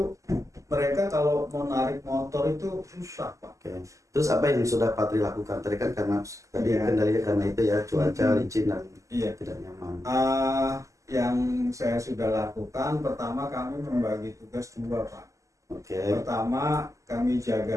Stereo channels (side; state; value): left; late; 0.16 ms